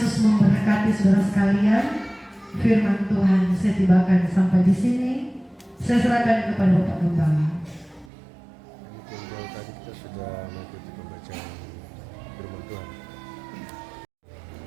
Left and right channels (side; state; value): left; drops out; at 8.1 s